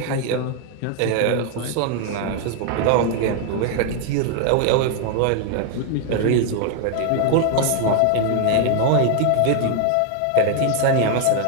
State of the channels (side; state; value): both; different; correlation 0.00